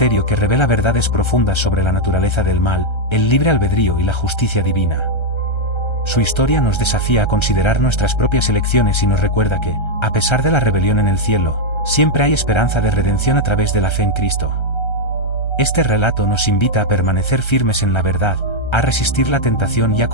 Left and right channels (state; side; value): late; right; 1.3 ms